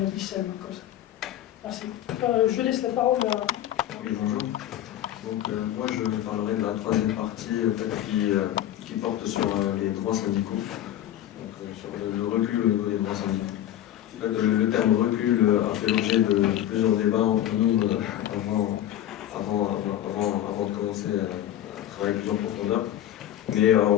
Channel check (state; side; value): quieter; right; 12.1 dB